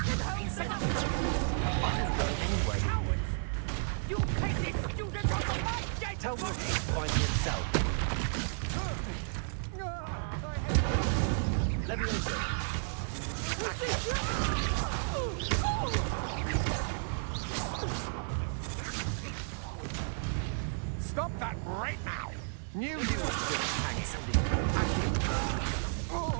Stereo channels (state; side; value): silent; left; digital silence